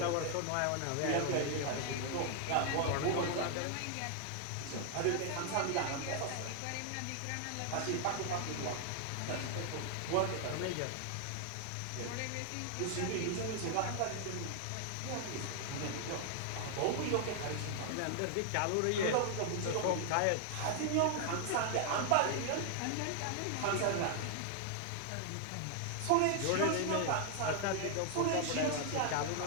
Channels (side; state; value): both; different; correlation 0.00